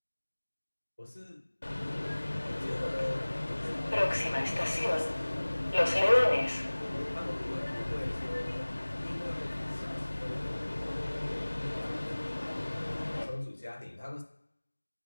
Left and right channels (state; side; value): inverted; both; correlation -1.00